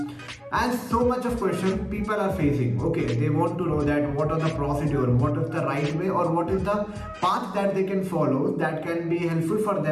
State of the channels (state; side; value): identical; both; correlation 1.00